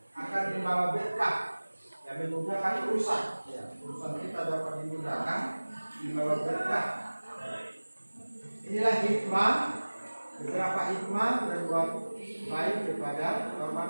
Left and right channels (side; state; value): both; inverted; correlation -1.00